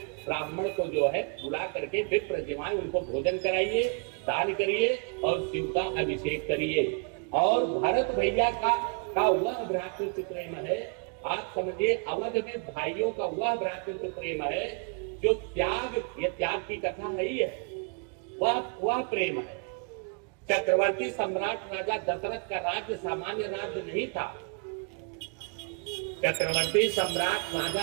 ब्राह्मण को जो है बुला करके विप्रज्वानि उनको भोजन कराइए, दान करिए और शिव का अभिषेक करिए। और भरत भैया का वह भ्रातृत्व प्रेम है, आप समझिए अवध में भाइयों का वह भ्रातृत्व प्रेम है जो त्याग, ये त्याग की कथा नहीं है, वह प्रेम है। चक्रवर्ती सम्राट राजा दशरथ का राज्य सामान्य राज्य नहीं था। चक्रवर्ती सम्राट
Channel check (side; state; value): left; quieter; 37.4 dB